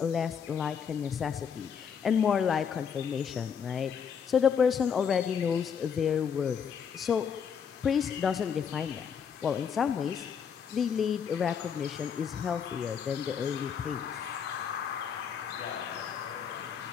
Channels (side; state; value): right; quieter; 7.2 dB